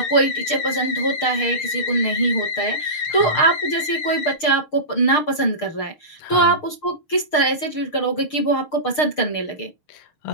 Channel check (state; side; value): late; right; 6.6 ms